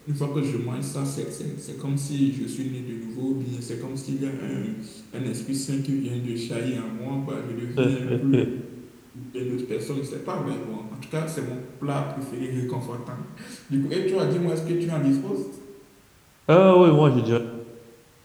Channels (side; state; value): both; identical; correlation 1.00